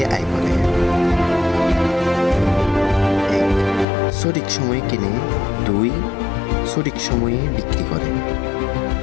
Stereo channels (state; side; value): drops out; right; at 3.9 s